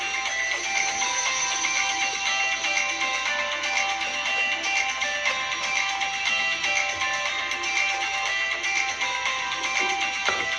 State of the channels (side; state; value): right; noise; hum, 26 dB below the sound